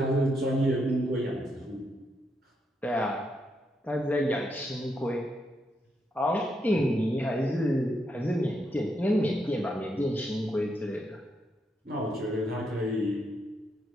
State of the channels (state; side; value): normal; both; correlation 0.80